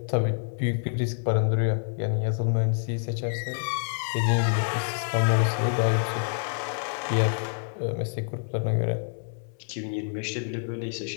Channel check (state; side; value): silent; right; 60 dB below the other